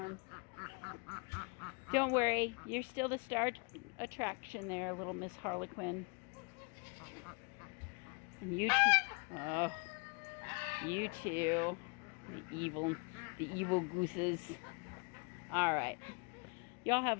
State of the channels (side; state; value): right; quieter; 33.2 dB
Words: Don't worry, you're still the star attraction there, little Miss Harlequin. And you too. Oh, you too. The evil gooses. All right. Y'all have a